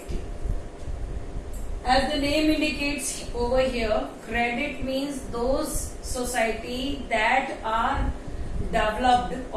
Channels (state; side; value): identical; both; correlation 1.00